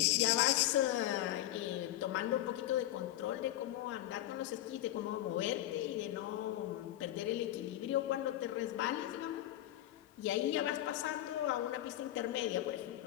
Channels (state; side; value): quieter; right; 14.1 dB